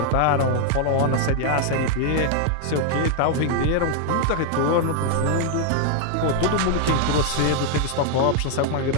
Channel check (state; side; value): different; both; correlation 0.00